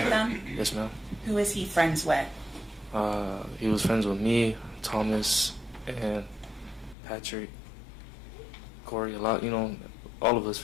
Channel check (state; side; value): drops out; right; at 7.0 s